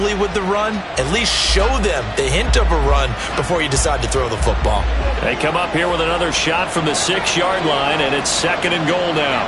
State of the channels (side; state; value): both; identical; correlation 1.00